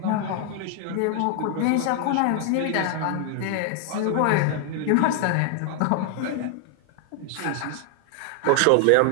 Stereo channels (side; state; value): both; different; correlation 0.00